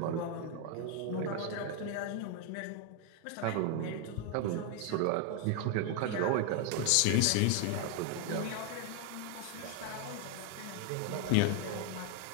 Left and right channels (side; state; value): both; different; correlation 0.01